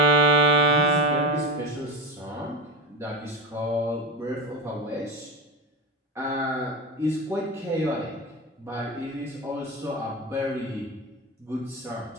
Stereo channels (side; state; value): both; normal; correlation 0.19